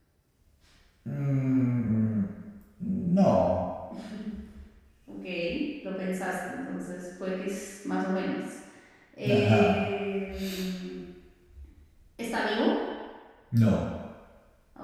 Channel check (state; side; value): identical; both; correlation 1.00